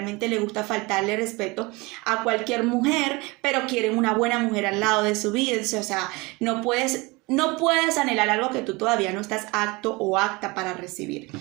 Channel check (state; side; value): quieter; left; 24.8 dB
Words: les gusta faltarle respeto a cualquier mujer, pero quieren una buena mujer al lado de su vida. O sea, no puedes anhelar algo que tú todavía no estás apto o apta para recibir.